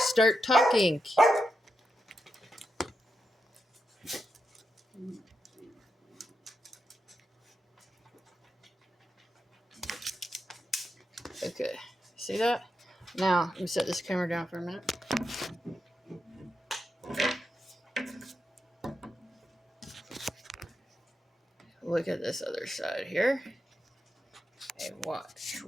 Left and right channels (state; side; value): normal; both; correlation 0.86